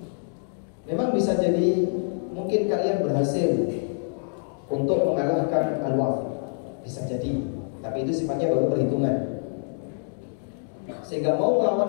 Memang bisa jadi mungkin kalian berhasil untuk mengalahkan Al-Wathiq, bisa jadi, tapi itu sifatnya baru perhitungan. Sehingga mau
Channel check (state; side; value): silent; right; digital silence